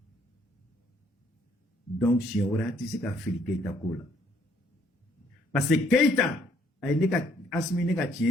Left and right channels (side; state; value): both; normal; correlation 0.65